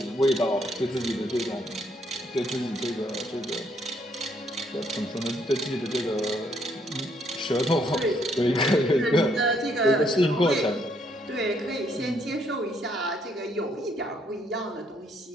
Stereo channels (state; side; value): normal; both; correlation 0.70